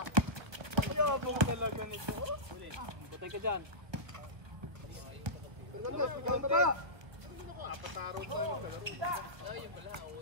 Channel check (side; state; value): left; late; 1.1 ms